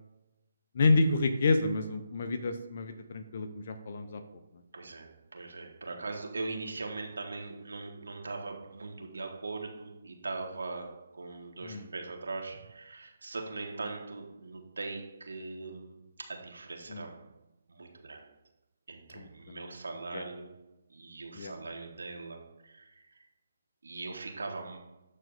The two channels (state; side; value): inverted; both; correlation -0.85